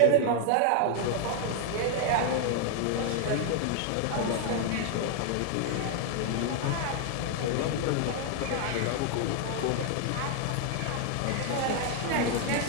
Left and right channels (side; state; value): both; different; correlation 0.00